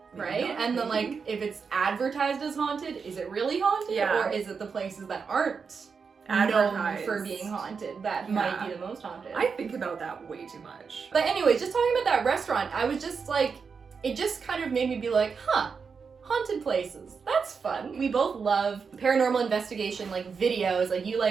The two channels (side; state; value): left; quieter; 5.6 dB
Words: Right? And then, like, if it's advertised as haunted, is it really haunted? Yeah. Or is it the places that aren't Advertised. known for being haunted that might be the most haunted? I think about that way too much. But anyways, just talking about that restaurant, I was just like, it just kind of made me be like, huh, haunted places. That's fun. We both love paranormal investigation, like, videos. Like, you